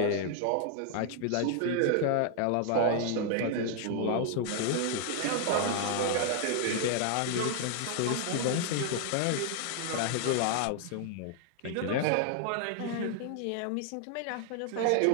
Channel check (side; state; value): both; different; correlation 0.00